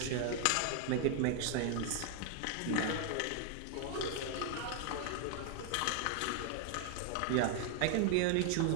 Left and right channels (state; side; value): different; both; correlation 0.00